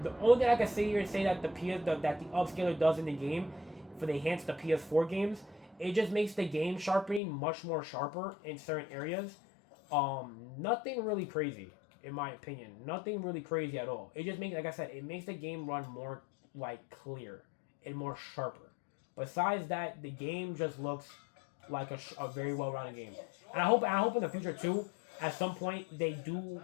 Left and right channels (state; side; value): drops out; right; at 7.2 s